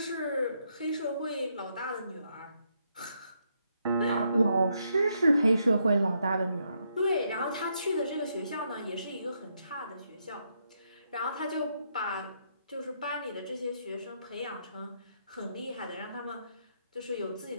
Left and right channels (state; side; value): inverted; both; correlation -0.77